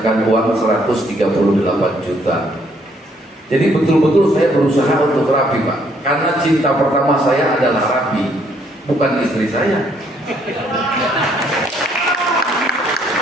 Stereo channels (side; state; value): both; normal; correlation 0.68